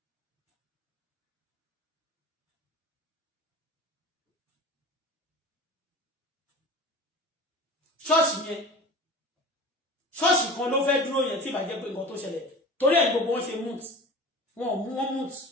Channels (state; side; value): normal; both; correlation 0.37